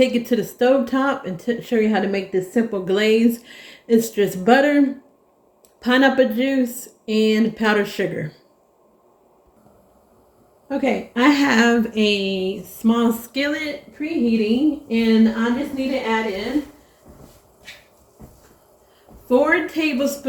it to the stove top and show you how to make this simple glaze. It's just butter, pineapple juice, and powdered sugar. Okay, I have a small skillet preheating, and I just need to add in 4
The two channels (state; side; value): identical; both; correlation 1.00